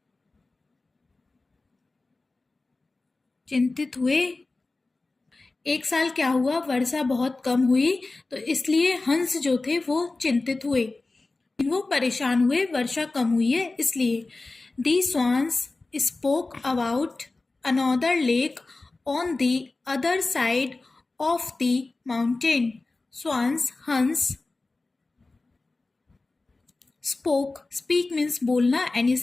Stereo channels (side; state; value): right; quieter; 3.3 dB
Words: चिंतित हुए। एक साल क्या हुआ? वर्षा बहुत कम हुई तो इसलिए हंस जो थे वो चिंतित हुए, वो परेशान हुए, वर्षा कम हुई है इसलिए। The swans spoke about another lake on the other side of the mountain. Swans हंस। स्पोक, स्पीक मीन्स बोलना एंड ये